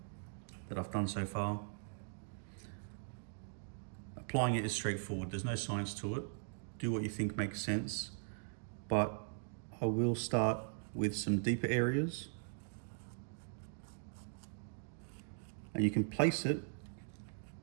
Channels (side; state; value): left; silent; digital silence